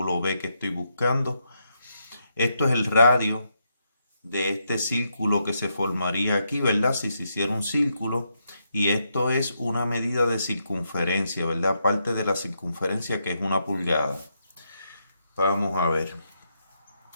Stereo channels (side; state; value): both; inverted; correlation -0.81